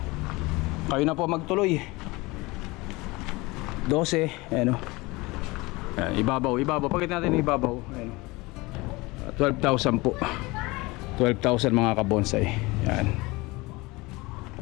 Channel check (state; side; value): quieter; right; 22.9 dB